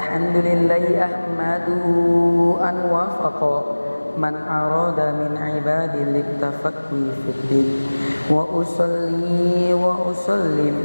ahmaduhu an wafaqa man arada min ibadi liktafaqwi fiddin. Wa usalli wa usallim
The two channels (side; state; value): both; inverted; correlation -1.00